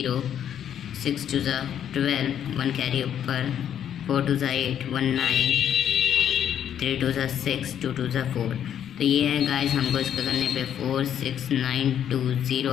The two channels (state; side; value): quieter; right; 9.6 dB